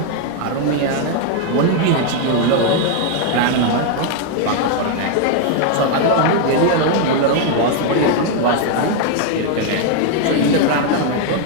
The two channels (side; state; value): both; different; correlation 0.00